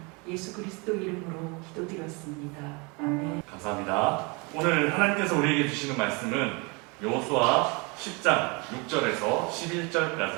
예수 그리스도 이름으로 기도드렸습니다. 아멘. 감사합니다. 오늘 하나님께서 우리에게 주시는 말씀은 여호수아 10장 6절에서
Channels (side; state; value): left; quieter; 29.5 dB